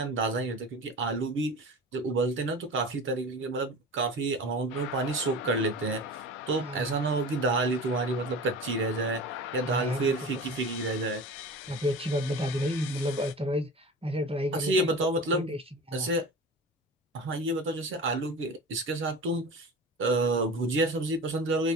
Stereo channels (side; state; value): both; normal; correlation 0.34